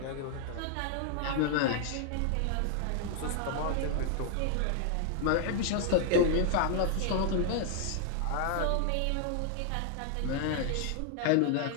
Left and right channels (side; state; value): both; different; correlation 0.00